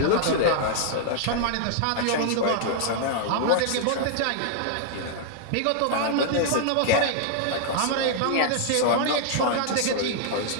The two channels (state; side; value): different; both; correlation -0.01